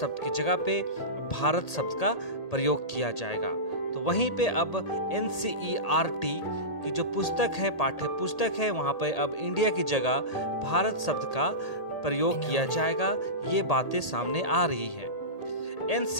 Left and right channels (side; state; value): right; late; 1.8 ms